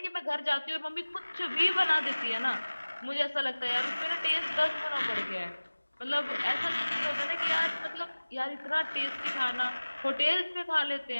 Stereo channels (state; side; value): inverted; both; correlation -1.00